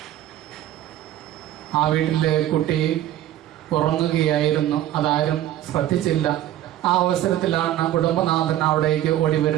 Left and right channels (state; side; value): quieter; left; 12.9 dB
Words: ആ വീട്ടിലെ കുട്ടി ഉറങ്ങുകയായിരുന്നു. അതാരും ശ്രദ്ധിച്ചില്ല. ആ അവസരത്തിലാണ് കുടുംബനാഥൻ അവിടേക്ക് ഓടി